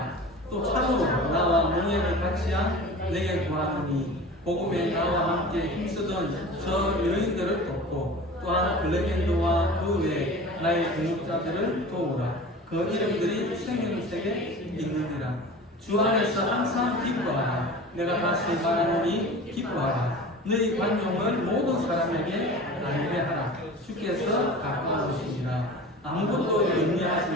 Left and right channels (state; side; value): normal; both; correlation 0.37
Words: 또 참으로 나와 몽예를 같이한 내게 구하노니 복음에 나와 함께 힘쓰던 저 여인들을 돕고 또한 블레겐드와 그 외 나의 동역자들을 도우라. 그 이름들이 생명책에 있느니라. 주 안에서 항상 기뻐하라. 내가 다시 말하노니 기뻐하라. 너희 관용을 모든 사람에게 알게 하라. 주께서 가까우시니라. 아무것도